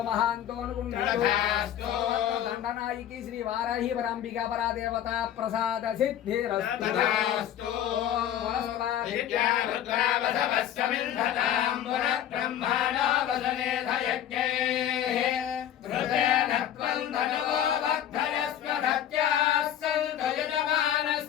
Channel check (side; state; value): right; quieter; 10.8 dB